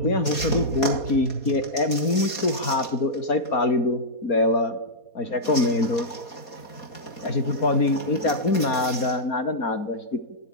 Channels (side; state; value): right; late; 4.2 ms